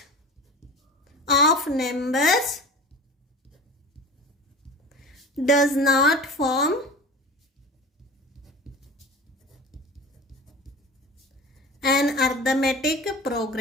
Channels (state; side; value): normal; both; correlation 0.36